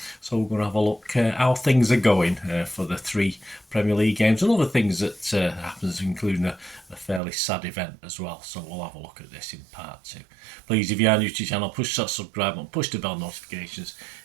So we're going to have a look how things are going for the 3 Premier League games and other things that happens, including a fairly sad event as well. So we'll have a look at this in part 2. Please, if you are new to the channel, push that subscribe button, push the bell notifications,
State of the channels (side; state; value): left; drops out; at 7.2 s